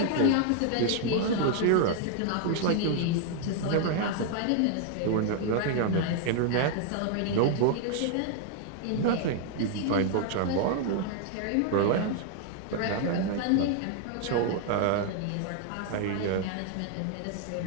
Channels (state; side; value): different; both; correlation 0.00